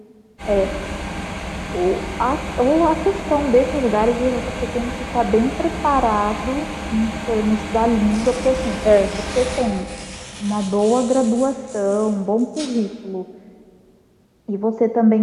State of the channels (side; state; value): both; identical; correlation 1.00